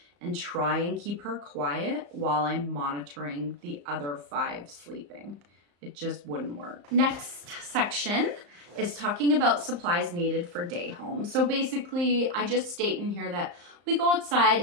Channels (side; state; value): left; late; 34 ms